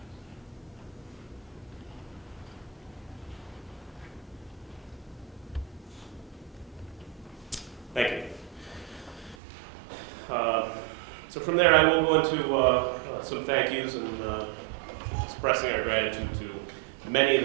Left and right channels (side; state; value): left; drops out; at 9.3 s